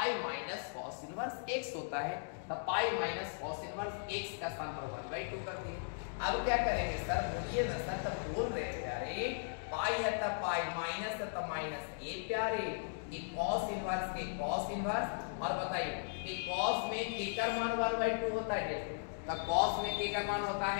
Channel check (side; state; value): right; silent; digital silence